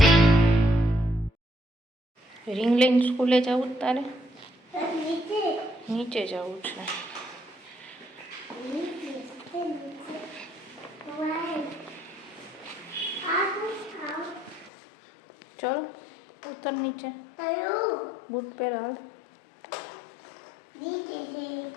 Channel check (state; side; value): drops out; right; at 14.7 s